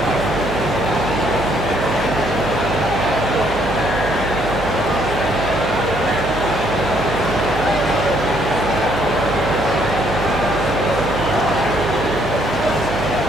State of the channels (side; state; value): right; noise; hum, 7 dB below the sound